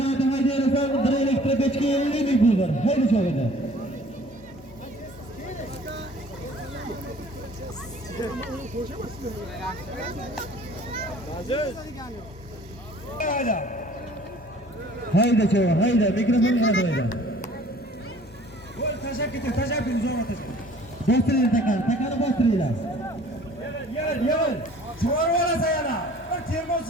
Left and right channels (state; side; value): normal; both; correlation 0.51